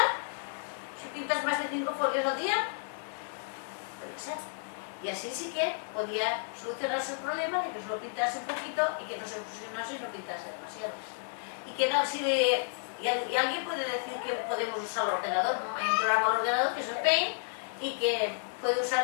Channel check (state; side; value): silent; right; digital silence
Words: Si pintas más de 5 folios al día, puede ser. Y así sí que podía solucionarse el problema de que solo pintase un poquito y que no se fusionase y no pintase demasiado. Y alguien puede decir que podemos usar el ordenador, ¿no? Hay un programa al ordenador que es el Paint y que puede usar